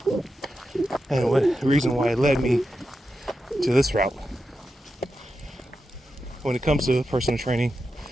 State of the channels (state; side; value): normal; both; correlation 0.89